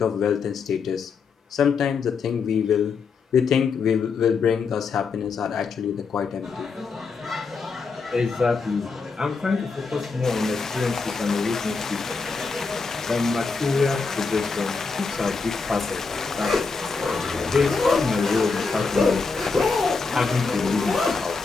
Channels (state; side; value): quieter; right; 4.8 dB